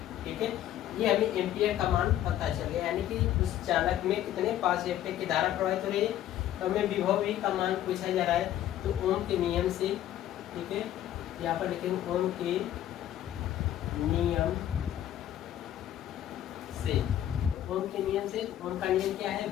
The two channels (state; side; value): quieter; right; 12.0 dB